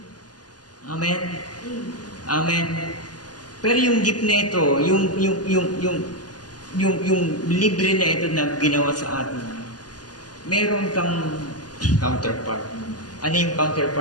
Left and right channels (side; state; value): right; late; 0.69 ms